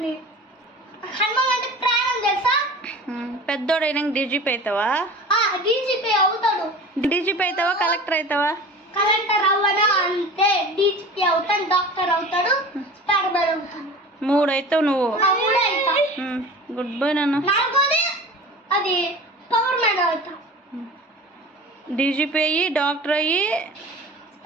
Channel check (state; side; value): normal; both; correlation 0.38